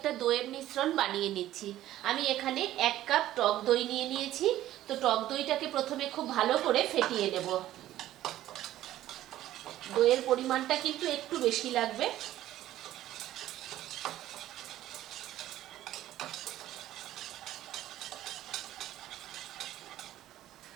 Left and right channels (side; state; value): left; quieter; 13.7 dB